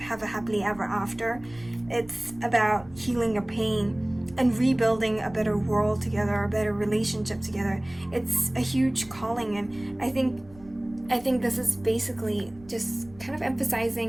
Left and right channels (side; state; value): right; noise; rumble, 22 dB below the sound